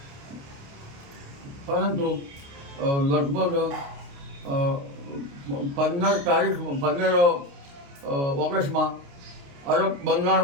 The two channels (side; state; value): left; late; 29 ms